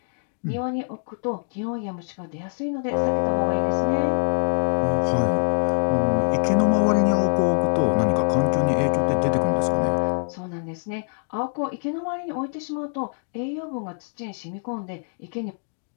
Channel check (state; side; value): silent; right; 56 dB below the other